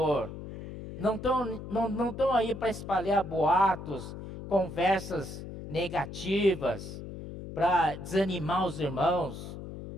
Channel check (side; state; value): left; noise; hum, 10 dB below the sound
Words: Não estão aí para espalhar boatos, conversas negativas, para desanimar os irmãos.